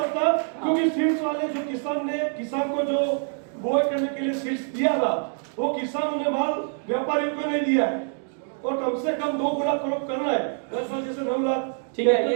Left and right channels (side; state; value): left; silent; 57 dB below the other